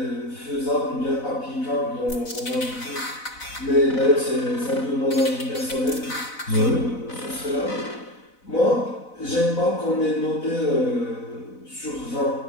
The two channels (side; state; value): right; late; 4.0 ms